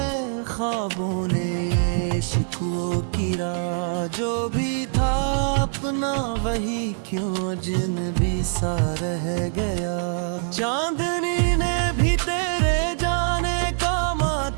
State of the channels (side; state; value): left; silent; digital silence